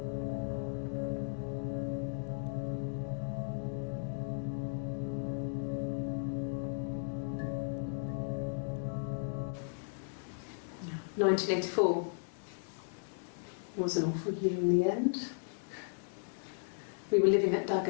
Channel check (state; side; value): silent; right; digital silence